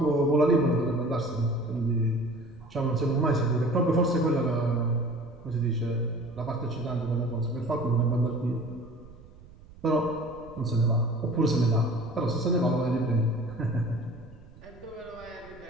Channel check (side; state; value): right; noise; rumble, 21 dB below the sound